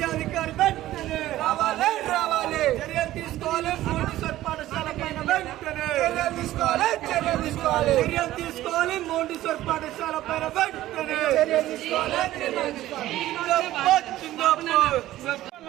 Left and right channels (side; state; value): left; quieter; 14.9 dB